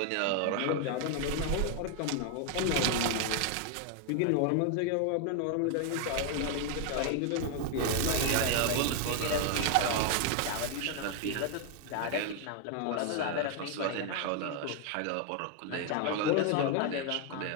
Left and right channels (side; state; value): both; different; correlation 0.00